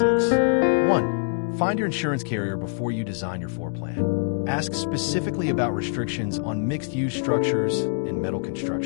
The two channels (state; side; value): silent; right; digital silence